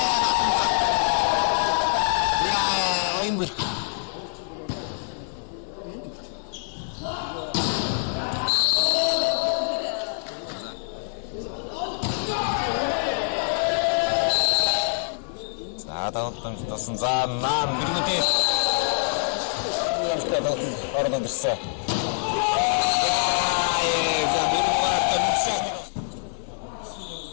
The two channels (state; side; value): silent; right; 62 dB below the other